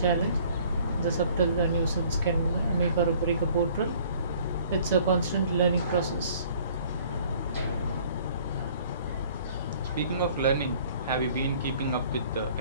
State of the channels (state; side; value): inverted; both; correlation -0.55